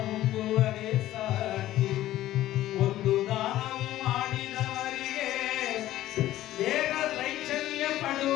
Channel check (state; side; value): quieter; right; 14.3 dB